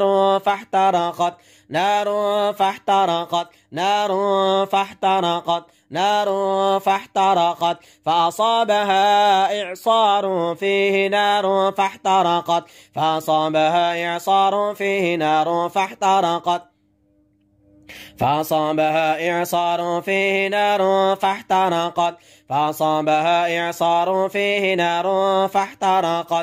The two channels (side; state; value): both; identical; correlation 1.00